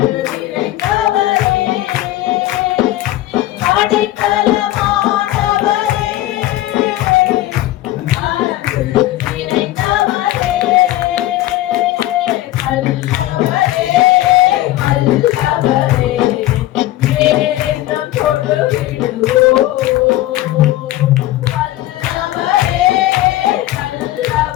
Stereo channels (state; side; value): quieter; right; 15.4 dB